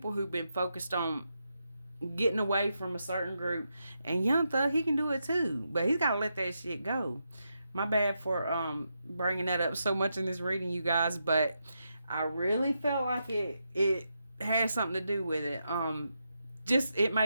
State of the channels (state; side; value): inverted; both; correlation -0.84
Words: who've been focused on getting away from a certain group. And Young Thug, he can do it too, but he's got to let that shit go. My bad for bringing that up so much in this reading, you guys, but I really felt like it had something to do with it. Just it